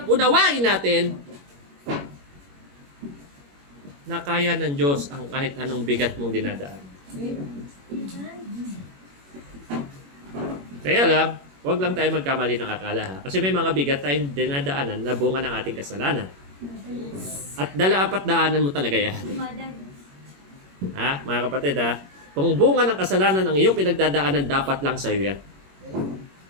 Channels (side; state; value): left; late; 21 ms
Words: unawain natin na kaya ng Diyos ang kahit anong bigat mong dinadaan? Kaya lang, huwag lang tayo magkamali ng akala ha. Kasi may mga bigat tayong dinadaanan na bunga ng ating kasalanan. At dala-apat daanan mo talaga yan. Ha, mga kapatid ha? Kung bunga ng kasalanan ang iyong pinagdadaanan, dapat lang sa'yo yan.